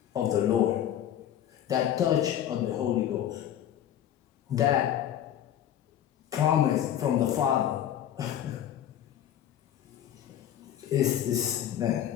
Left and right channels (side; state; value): right; quieter; 10.8 dB